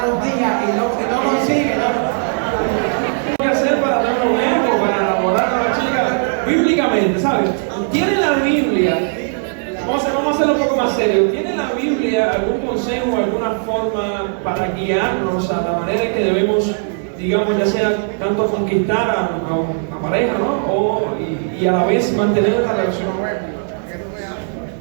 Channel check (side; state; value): left; silent; 64 dB below the other